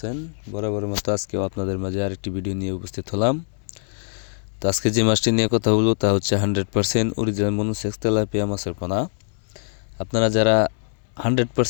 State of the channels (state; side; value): silent; right; 63 dB below the other